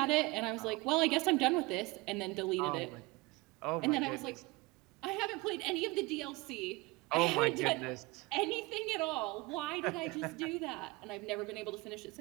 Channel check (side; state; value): left; quieter; 23.5 dB